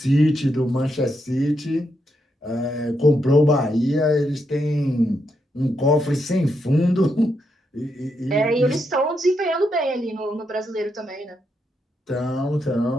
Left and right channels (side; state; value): both; normal; correlation 0.81